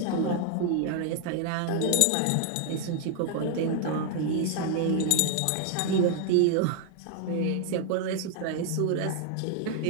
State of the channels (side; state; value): both; different; correlation 0.00